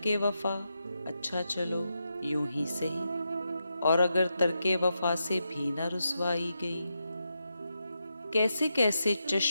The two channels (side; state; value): both; inverted; correlation -0.86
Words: وفا، اچھا چلو یوں ہی سہی، اور اگر ترک وفا سے بھی نہ رسوائی گئی۔ کیسے کیسے